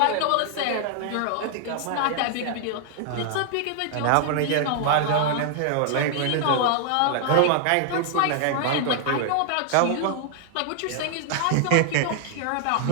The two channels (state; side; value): different; both; correlation 0.00